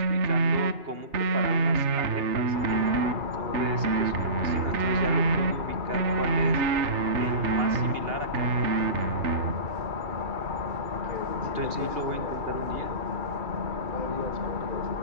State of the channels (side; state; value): left; late; 2.8 ms